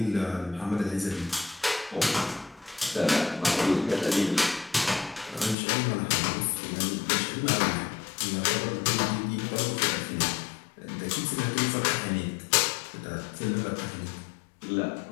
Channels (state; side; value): drops out; right; at 5.6 s